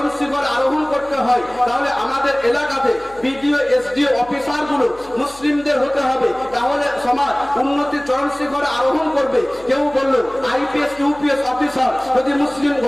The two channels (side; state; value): left; noise; hum, 23 dB below the sound